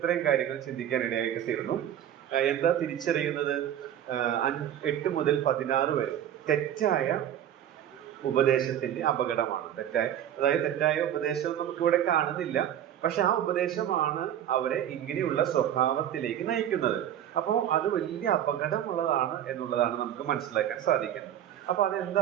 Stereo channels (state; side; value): quieter; left; 10.7 dB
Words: ചിന്തിക്കാൻ ഇടയായിട്ട് തീർന്നു. എന്താ തിരിച്ചറിയുന്നത്? 8 മുതൽ 16 വരെ തെറ്റായ ഉപദേശത്തിന്റെ അപകടമാണ്. തെറ്റായ ഉപദേശം നമുക്കിവിടെ കാണുന്നില്ല, പക്ഷെ ആ ഉപദേശമാണ് അവരെ ഇങ്ങനെയുള്ള സ്വഭാവത്തിലേക്ക് നയിക്കുന്നത്. അപ്പോൾ അത് വലിയ അപകടമുള്ളതാണ് എന്നുള്ളതാണ് നമുക്ക് മനസ്സിലാക്കാൻ സാധിക്കുന്നത്. അപ്പൊ